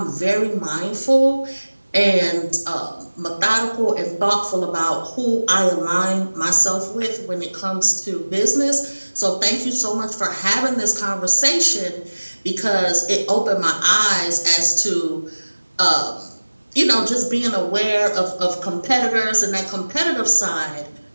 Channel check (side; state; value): both; inverted; correlation -1.00